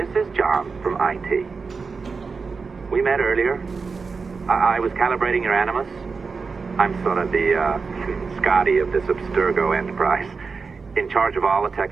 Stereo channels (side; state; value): left; quieter; 4.8 dB